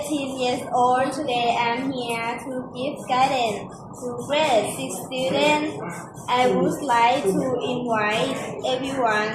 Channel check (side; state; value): both; identical; correlation 1.00